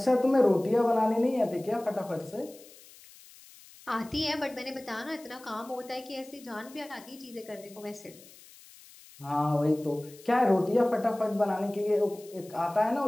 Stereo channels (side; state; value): left; noise; hiss, 22 dB below the sound